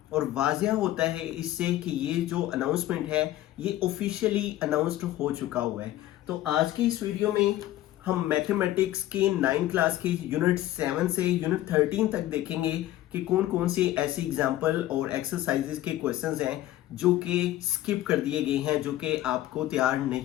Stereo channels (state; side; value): quieter; right; 14.4 dB